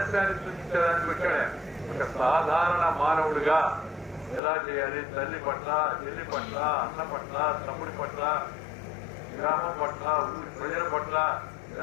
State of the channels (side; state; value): right; drops out; at 4.4 s